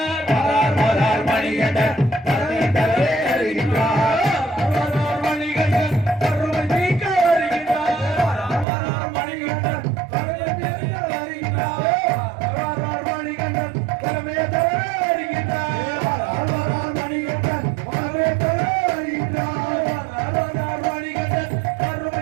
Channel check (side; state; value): left; drops out; at 8.7 s